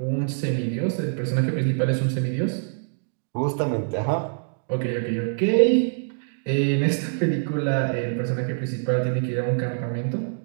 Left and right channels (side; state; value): left; silent; digital silence